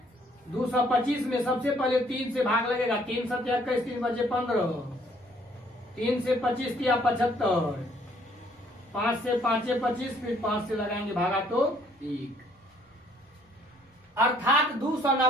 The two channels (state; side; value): normal; both; correlation 0.63